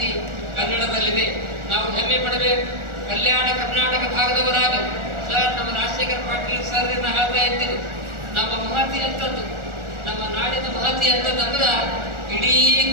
ಕನ್ನಡದಲ್ಲಿದೆ. ನಾವು ಹೆಮ್ಮೆ ಪಡಬೇಕು. ಕಲ್ಯಾಣ ಕರ್ನಾಟಕ ಭಾಗದವರಾಗ ಸರ್, ನಮ್ಮ ರಾಜಶೇಖರ ಪಾಟೀಲ್ ಸರ್ ಹೇಳ್ತಾ ಇದ್ದೀನಿ, ನಮ್ಮ ಮಹತಿ ಅಂತದ್ದು, ನಮ್ಮ ನಾಡಿನ ಮಹತಿ ಅಂತಂದ್ರ ಇಡೀ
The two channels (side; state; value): left; late; 1.4 ms